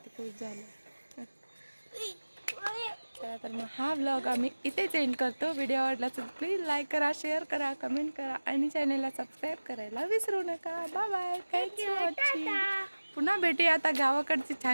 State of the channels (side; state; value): both; inverted; correlation -1.00